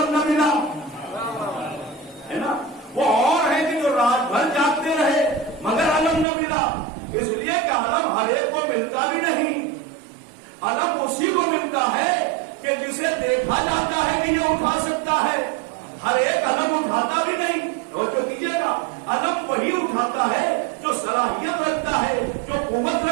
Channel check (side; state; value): left; drops out; at 6.2 s